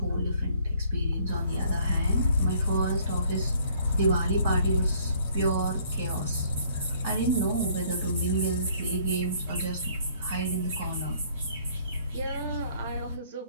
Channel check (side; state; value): both; inverted; correlation -0.60